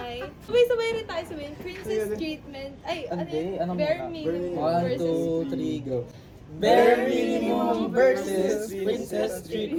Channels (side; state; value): both; identical; correlation 1.00